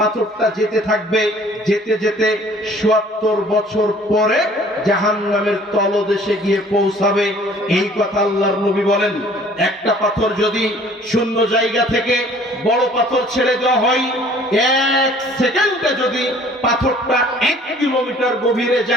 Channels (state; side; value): normal; both; correlation 0.54